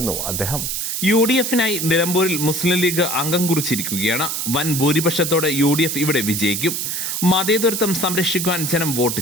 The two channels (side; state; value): right; noise; hiss, 2 dB below the sound